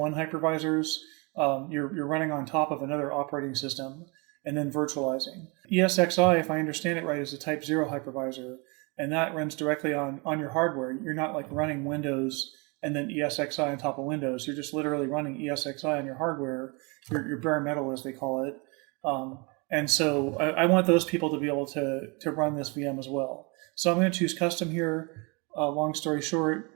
hypervisors. You're running on top of another operating system and then virtualizing. ESXI, if I understand it right, is a type 0 hypervisor, and that runs directly on your hardware. You're not like running Windows and then ESXI on top of Windows. You're just literally running ESXI on your hardware, your bare metal as they call it. And so I want those people to be able to run this VM as well. So I'm going to choose custom here, long story short.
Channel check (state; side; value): quieter; left; 30.3 dB